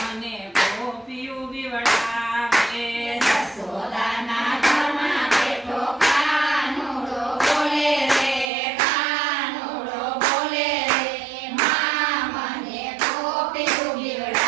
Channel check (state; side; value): drops out; left; at 8.5 s